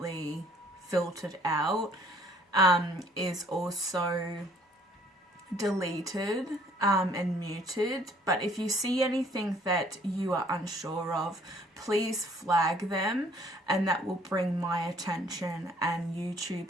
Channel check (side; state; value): both; normal; correlation 0.60